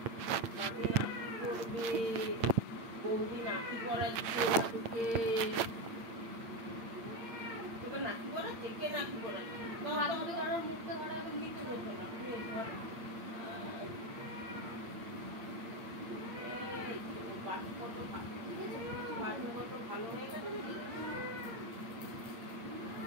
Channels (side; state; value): left; late; 8.8 ms